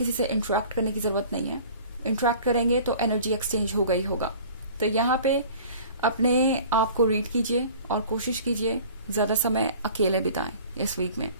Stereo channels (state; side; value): inverted; both; correlation -0.46